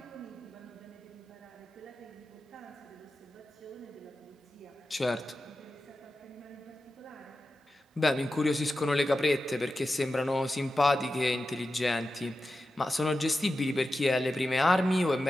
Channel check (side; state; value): both; normal; correlation 0.92